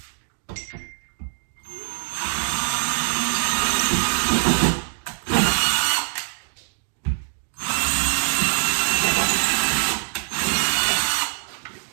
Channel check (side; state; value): left; silent; 56 dB below the other